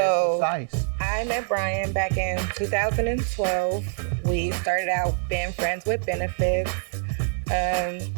so- precise. I met Brian back in 2012. We started out being friends with benefits.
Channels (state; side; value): silent; left; 62 dB below the other